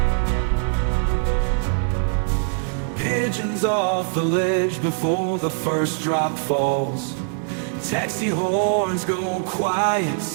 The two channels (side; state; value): left; silent; 64 dB below the other